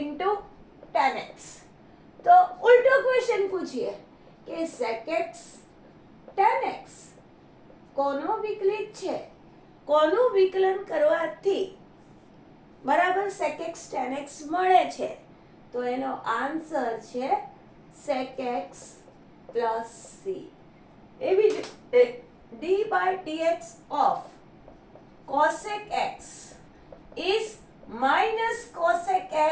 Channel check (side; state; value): both; identical; correlation 1.00